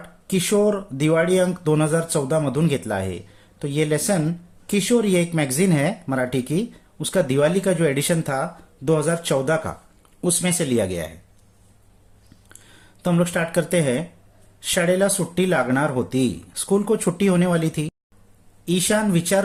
किशोर दिवाळी अंक 2014 मधून घेतला आहे। तो ये लेसन किशोर, ये एक मैगजीन है मराठी की, उसका दिवाली का जो एडिशन था 2014 का, उसमें से लिया गया है। तो हम लोग स्टार्ट करते हैं। शाळेला सुट्टी लागणार होती, स्कूल को छुट्टी होने वाली थी। ईशान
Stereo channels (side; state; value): both; identical; correlation 1.00